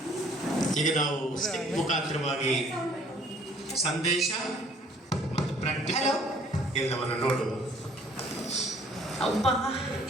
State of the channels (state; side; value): normal; both; correlation 0.57